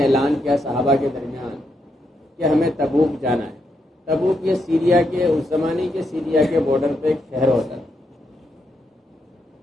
اعلان کیا صحابہ کے درمیان کہ ہمیں تبوک جانا ہے۔ تبوک یہ سیریا کے اس زمانے کے سیریا کے بارڈر پہ ایک شہر ہوتا ہے۔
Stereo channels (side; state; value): both; normal; correlation 0.80